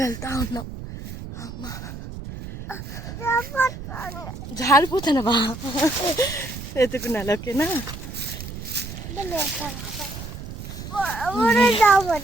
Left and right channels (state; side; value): noise; right; rumble, 10 dB below the sound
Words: వెళ్తా ఉన్నాం. అమ్మా జారిపోతానవా? ఎత్తుకున్నాను. ఓకేనా?